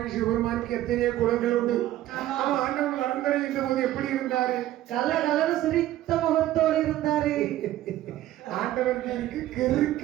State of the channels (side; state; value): left; quieter; 14.1 dB